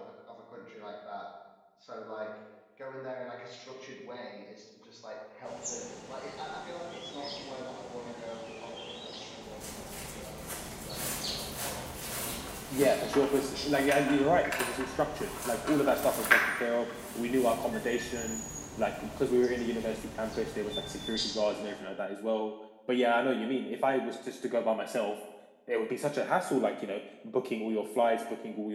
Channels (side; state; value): both; identical; correlation 1.00